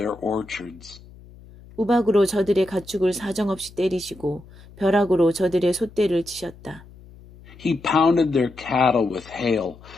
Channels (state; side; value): noise; left; hum, 21 dB below the sound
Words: orchards. 우박으로 저들의 가축을 사정없이 때리시고 벼락으로 저들의 솥대를 치셨다. He pounded their cattle with hail,